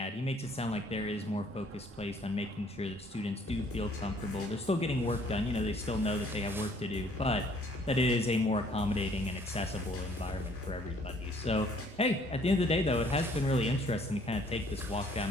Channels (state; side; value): normal; both; correlation 0.60